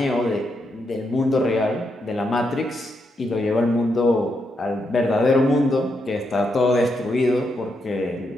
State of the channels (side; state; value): both; normal; correlation 0.81